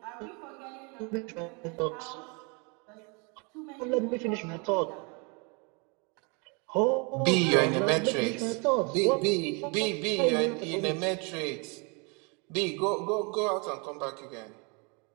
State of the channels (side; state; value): left; quieter; 32.8 dB